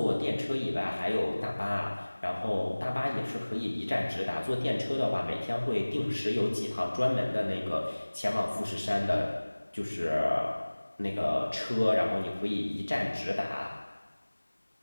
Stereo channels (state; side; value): inverted; both; correlation -1.00